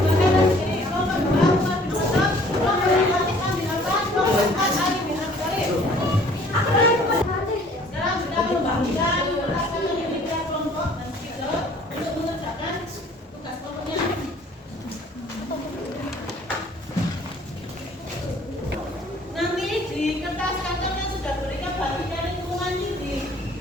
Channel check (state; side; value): normal; both; correlation 0.55